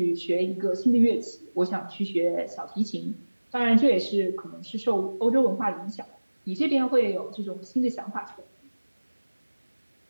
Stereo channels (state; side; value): inverted; both; correlation -1.00